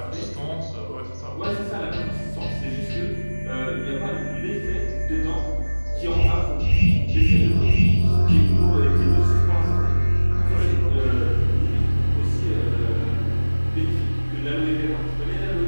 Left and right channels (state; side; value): inverted; both; correlation -1.00